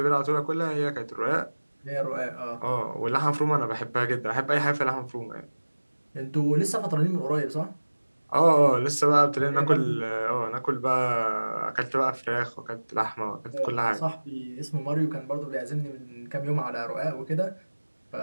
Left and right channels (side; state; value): both; inverted; correlation -1.00